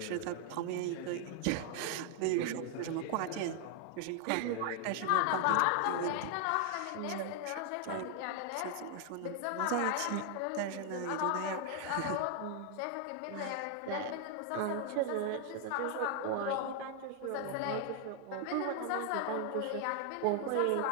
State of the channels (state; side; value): different; both; correlation 0.00